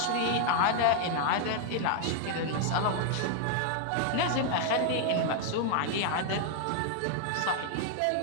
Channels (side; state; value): both; different; correlation 0.00